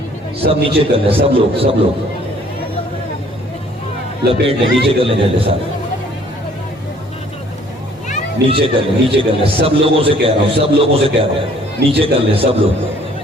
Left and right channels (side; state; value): both; normal; correlation 0.58